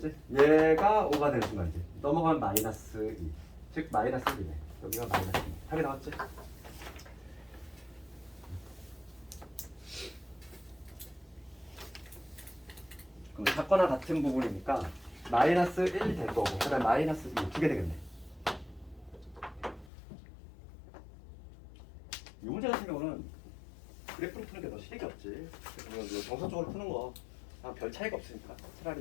얘가 5가 되는 순간이지. 넘어가면 마이너스 2. 즉 마이너스 1이네. 여기가 마이너스 2. 답이 나왔지? 그럼 같거나 같은 부분이니까 마이너스 1 될 거고 그 다음에 마이너스 2 두 개 되겠네. 이 문제 같은 경우는 그래프로 푸는 게 더 실력이 없지. 그래서 정석적으로 푸는 거 별 차이가 없으니까 차라리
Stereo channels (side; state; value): right; drops out; at 19.9 s